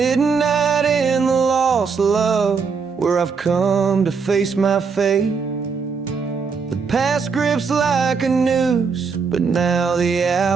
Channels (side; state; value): left; quieter; 5.4 dB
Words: in the lost love, where I've come to face my fate. The past grips like a noose, but now the